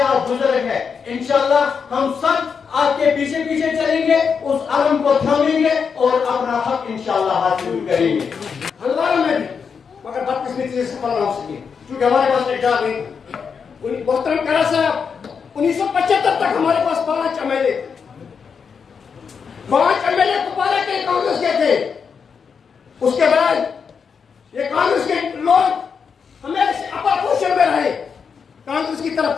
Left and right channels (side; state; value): right; quieter; 6.2 dB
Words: بزرگ ہیں، انشاءاللہ ہم سب آپ کے پیچھے پیچھے چلیں گے، اس علم کو تھامیں گے اور اپنا حق انشاءاللہ حاصل کریں گے. ہزاروں میں بھی مگر بدقسمتی سے سفل نہ ہو سکے کیونکہ ہمارے پاس اقدار نہیں. محترم کرا صاحب، 1975 تک ہمارے پاس 5 M L A, 5 M L A Kupwara کے کانگریس کے تھے. اس کے بعد یہ کانگریس کے لوگ ہمیں اپوزیشن میں رہے، کانگریس کی طرف